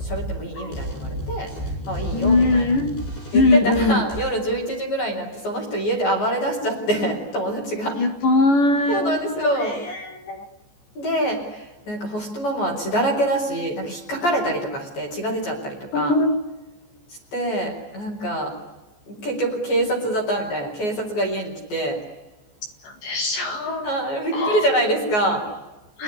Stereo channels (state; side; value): late; right; 14 ms